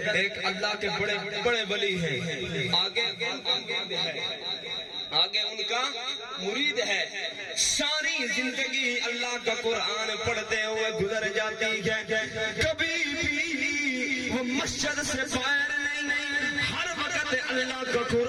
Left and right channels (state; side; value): identical; both; correlation 1.00